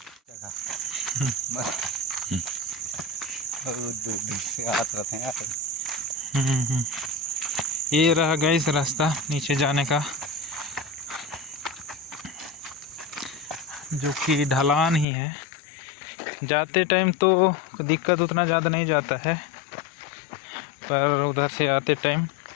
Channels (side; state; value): right; drops out; at 15.1 s